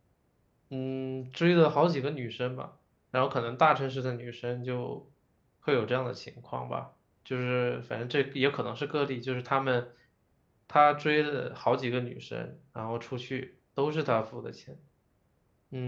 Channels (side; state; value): both; identical; correlation 1.00